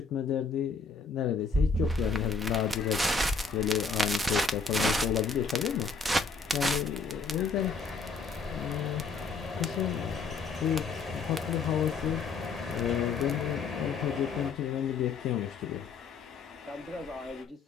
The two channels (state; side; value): quieter; right; 4.6 dB